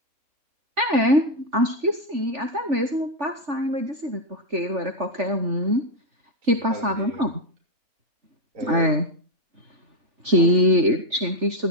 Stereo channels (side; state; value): left; late; 3.4 ms